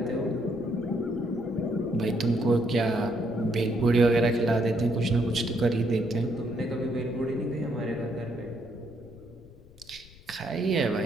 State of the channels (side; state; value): left; noise; rumble, 22 dB below the sound